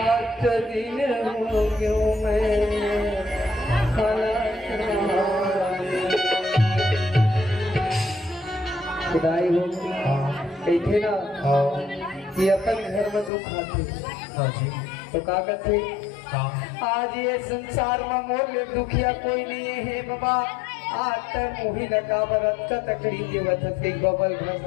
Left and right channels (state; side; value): drops out; right; at 13.3 s